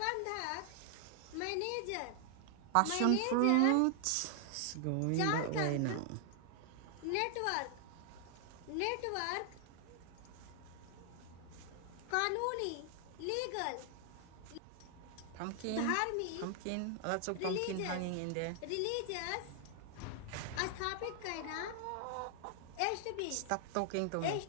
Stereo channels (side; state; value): both; different; correlation 0.00